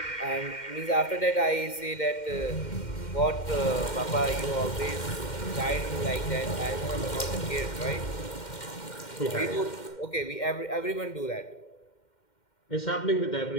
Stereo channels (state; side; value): late; right; 2.1 ms